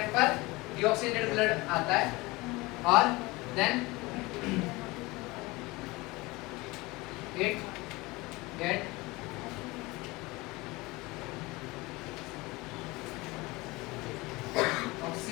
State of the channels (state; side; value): quieter; right; 22.5 dB